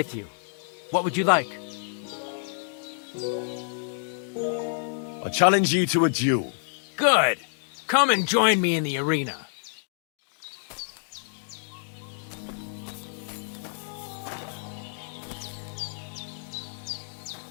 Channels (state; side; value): silent; right; digital silence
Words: you. What would you like? I challenge you to a duel. Good. Come and join me in the arena.